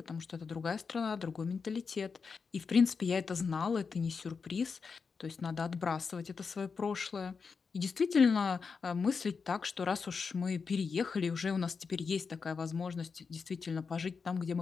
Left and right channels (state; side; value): quieter; right; 5.3 dB